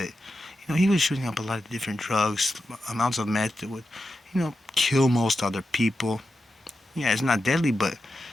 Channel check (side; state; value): both; normal; correlation 0.90